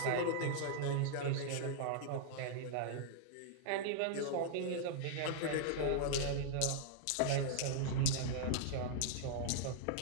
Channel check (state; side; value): different; both; correlation -0.01